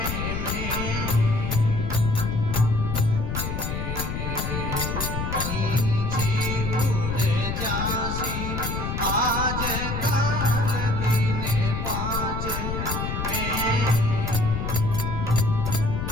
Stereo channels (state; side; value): noise; left; rumble, 3 dB below the sound